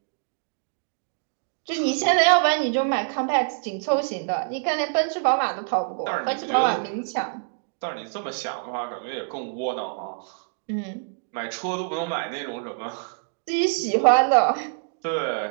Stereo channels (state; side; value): silent; left; digital silence